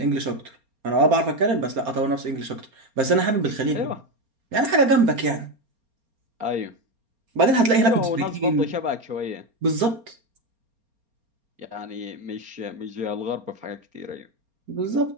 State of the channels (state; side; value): late; left; 4.3 ms